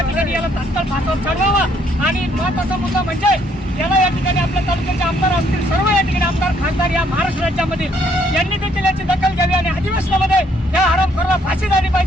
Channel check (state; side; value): normal; both; correlation 0.68